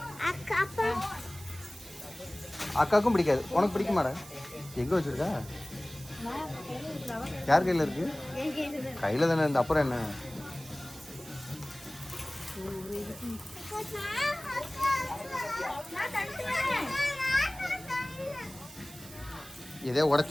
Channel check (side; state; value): right; noise; hiss, 17 dB below the sound